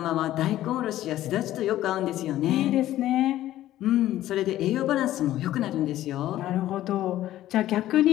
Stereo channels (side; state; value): right; quieter; 13.9 dB